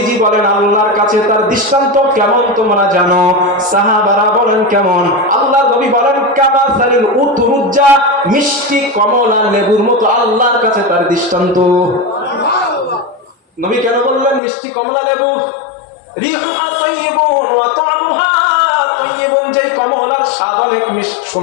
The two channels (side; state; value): right; drops out; at 14.4 s